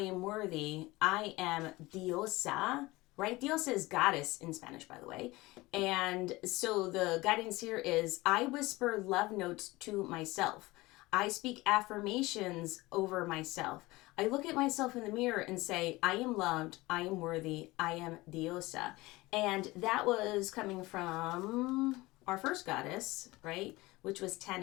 worthy, I am diosa, right? Diosa is goddess in Spanish, by the way. And so the guidance here is, I whisper love notes to myself. I speak affirmations over myself. I look at myself in the mirror and say, I am loved, I am worthy, I am diosa. And that was coming from our first goddess, right? Which was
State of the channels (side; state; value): right; quieter; 20.7 dB